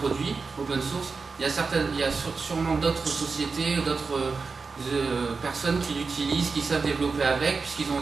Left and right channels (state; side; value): quieter; left; 4.6 dB